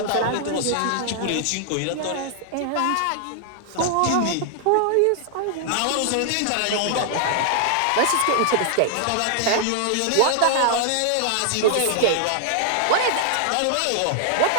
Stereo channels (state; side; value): different; both; correlation 0.00